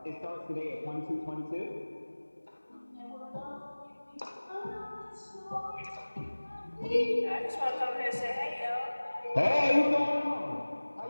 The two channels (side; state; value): both; inverted; correlation -1.00